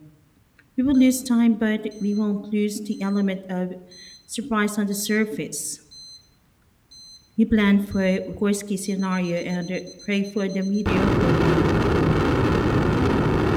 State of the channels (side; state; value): both; identical; correlation 1.00